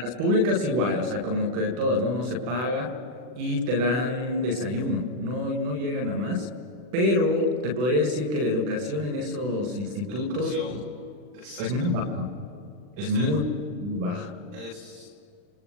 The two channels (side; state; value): left; late; 40 ms